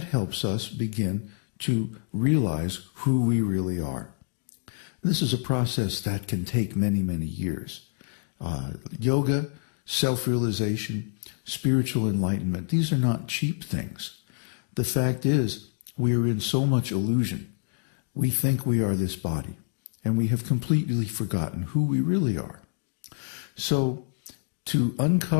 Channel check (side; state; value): right; silent; digital silence